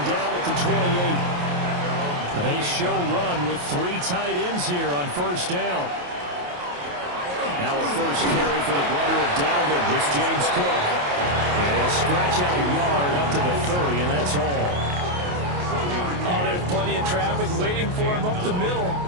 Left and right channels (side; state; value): left; late; 28 ms